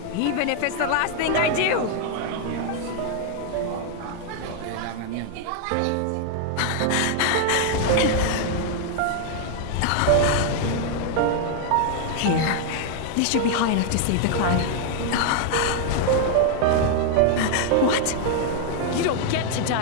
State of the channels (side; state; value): both; different; correlation 0.00